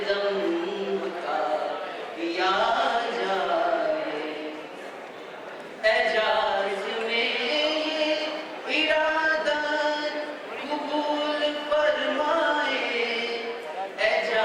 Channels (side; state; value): both; identical; correlation 1.00